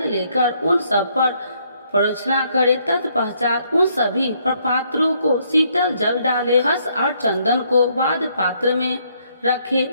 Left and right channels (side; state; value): both; inverted; correlation -0.70